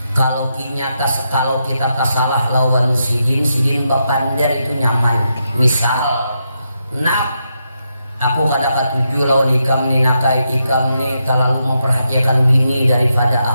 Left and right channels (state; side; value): inverted; both; correlation -0.83